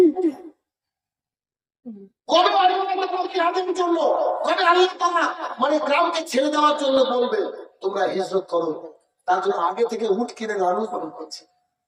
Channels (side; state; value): both; identical; correlation 1.00